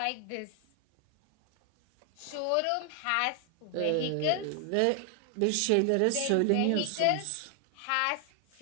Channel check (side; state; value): both; different; correlation 0.00